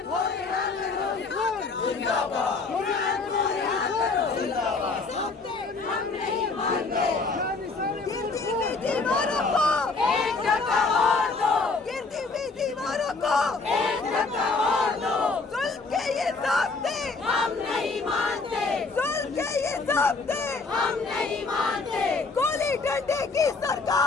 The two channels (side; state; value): right; quieter; 4.0 dB